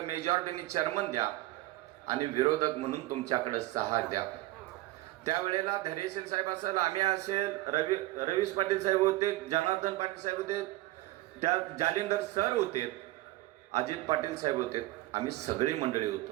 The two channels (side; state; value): left; quieter; 18.1 dB